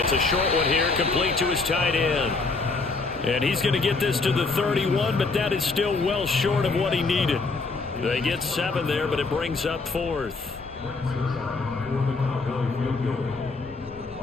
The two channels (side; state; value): right; quieter; 3.9 dB